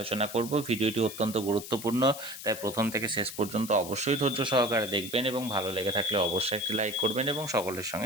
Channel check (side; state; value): left; noise; hiss, 11 dB below the sound